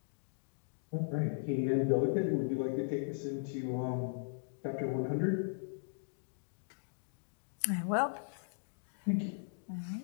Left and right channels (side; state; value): right; silent; digital silence